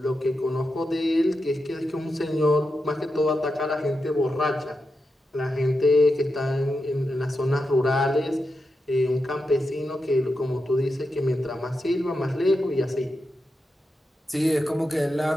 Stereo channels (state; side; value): normal; both; correlation 0.88